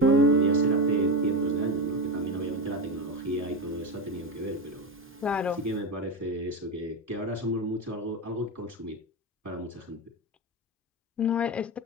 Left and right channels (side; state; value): both; normal; correlation 0.17